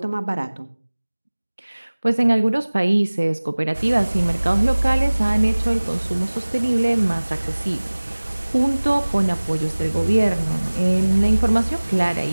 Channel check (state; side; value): inverted; both; correlation -1.00